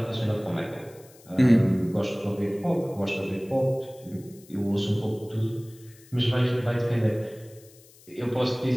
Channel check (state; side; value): noise; left; hiss, 25 dB below the sound